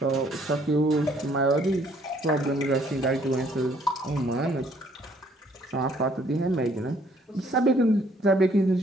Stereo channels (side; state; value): both; normal; correlation 0.63